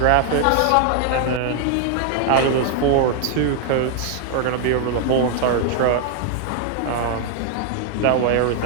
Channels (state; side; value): different; both; correlation 0.00